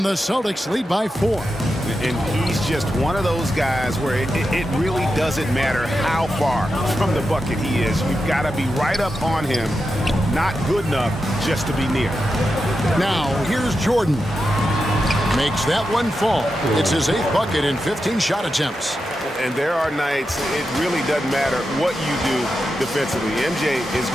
the Celtics lead by 4. And he's just one of those guys where it really doesn't matter how far from the bucket he is. You've got to be right up on him. Not good enough just to be near. Now, here's Jordan. Makes that one fall. It's his 8th bucket in 15 shot attempts. And there are nights it really doesn't matter what you do defensively. MJ is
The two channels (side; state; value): both; normal; correlation 0.89